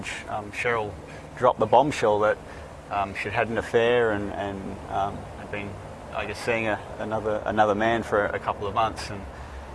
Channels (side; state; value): both; identical; correlation 1.00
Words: Cheryl dropped the bombshell that she'd had an affair and had been, I guess, seeing another man for a couple of months, and